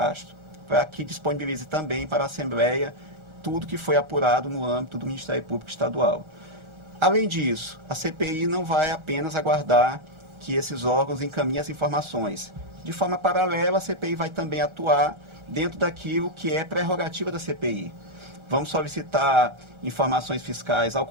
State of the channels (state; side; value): late; left; 1.4 ms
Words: para que disponibilize também para a Assembleia tudo que foi apurado no âmbito do Ministério Público Estadual. Além disso, a CPI não vai apenas aguardar que esses órgãos encaminhem as informações. De forma paralela, a CPI vai também atuar dentro daquilo que é prerrogativa da CPI. Vamos solicitar informações fiscais ao